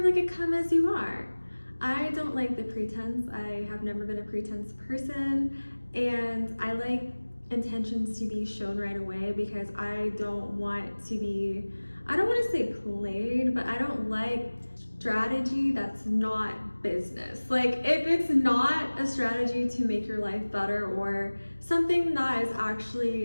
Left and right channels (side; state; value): both; inverted; correlation -1.00